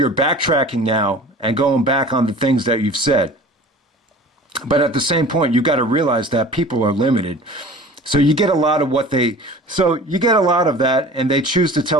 backtracking now and going back on the things that you've said. But at the same point, you got to realize that people are limited. So you get a lot of that, and they choose to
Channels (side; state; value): both; normal; correlation 0.42